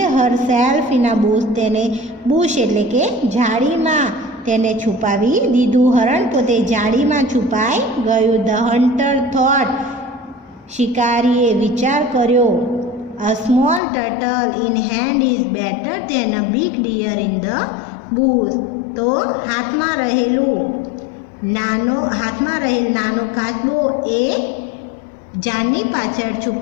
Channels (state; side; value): drops out; right; at 13.8 s